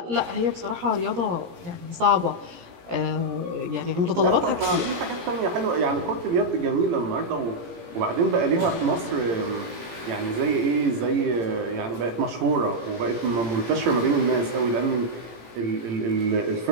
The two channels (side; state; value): left; late; 17 ms